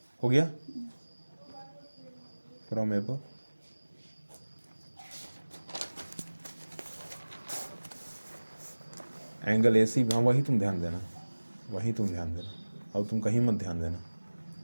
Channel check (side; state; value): both; inverted; correlation -1.00